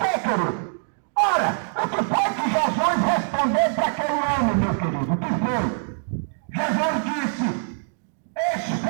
querido? Ora, o que foi que Jesus respondeu para aquele homem, meu querido? O que foi? Jesus disse:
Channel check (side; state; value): left; silent; 61 dB below the other